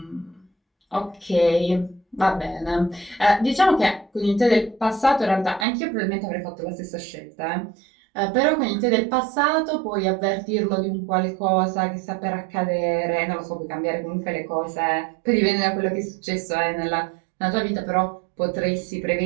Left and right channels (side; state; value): left; drops out; at 5.7 s